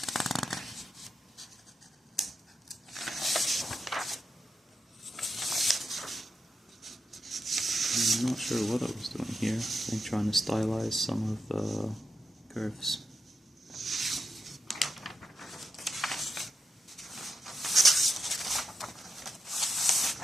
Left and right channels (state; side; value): normal; both; correlation 0.87